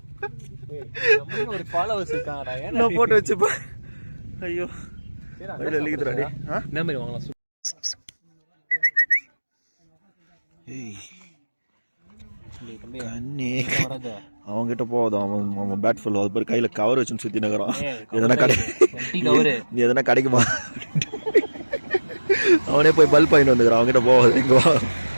ஒரு ஃபாலோவர்ஸ் இருக்காங்கடா. நான் போட்டு வச்சுப்பேன். ஐயோ எழுதிக்கிறாடி. என்ன மாதிரி வாங்கலாம். அவன்கிட்ட போதும். அவன் பேட் ஃபுல் அது பேர் கையில கவர் வச்சுன்னு சுத்தி நகரான். எதனா கிடைக்குமா? அவனே போய் பல்ப் வாங்கிட்டு வந்துக்கிறான். அவன்கிட்ட போகாது. இங்க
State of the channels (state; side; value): inverted; both; correlation -1.00